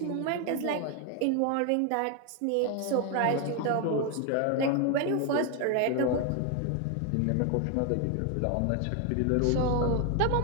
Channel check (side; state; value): both; different; correlation 0.01